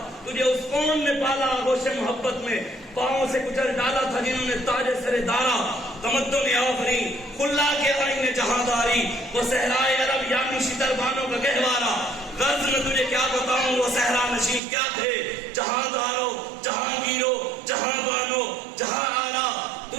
تجھے اس قوم نے پالا آغوش محبت میں پاؤں سے کچل ڈالا تھا جنہوں نے تاج سر دارا تمدن آفری کھلا کے آئین جہانداری وہ صحرائے عرب یعنی شتر بانوں کا گہوارا غرض میں تجھے کیا بتاؤں وہ صحرا نشین کیا تھے جہاندارو جہانگیرو جہاں بانو جہاں آلہ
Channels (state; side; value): drops out; left; at 14.6 s